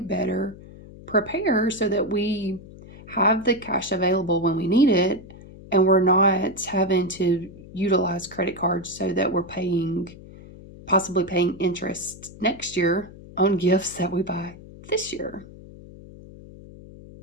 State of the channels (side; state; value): left; noise; hum, 18 dB below the sound